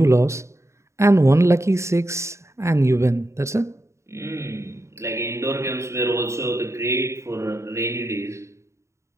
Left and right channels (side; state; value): left; late; 0.14 ms